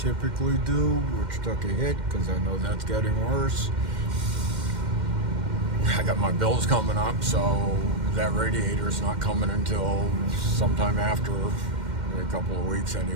do, which took a hit because I know that's getting worse. I got my bills coming up, so that radiator's not coming until sometime after a couple of weeks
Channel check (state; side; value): late; left; 2.1 ms